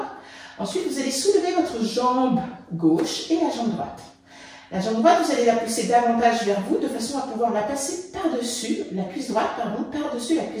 ? Ensuite, vous allez soulever votre jambe gauche et la jambe droite. La jambe droite, vous allez la pousser davantage vers vous de façon à pouvoir la passer par-dessus, la cuisse droite, pardon, par-dessus la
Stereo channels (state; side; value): identical; both; correlation 1.00